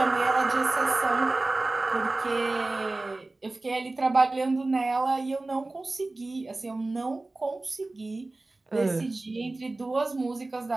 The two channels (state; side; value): quieter; left; 3.1 dB